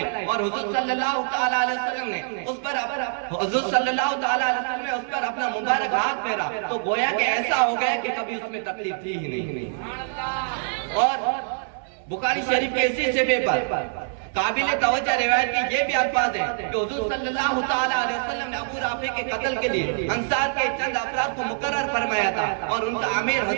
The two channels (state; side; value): silent; left; 62 dB below the other